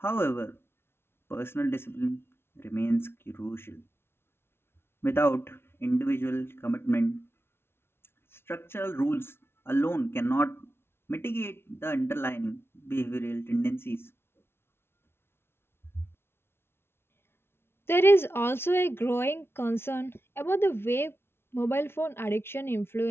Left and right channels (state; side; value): late; right; 0.12 ms